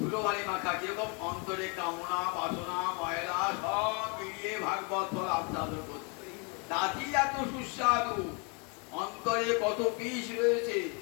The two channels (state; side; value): quieter; right; 33.8 dB